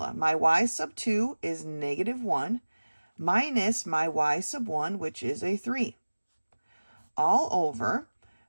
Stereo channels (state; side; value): inverted; both; correlation -1.00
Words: My y sub 2 is -1 minus my y sub 1, which is a 3. All over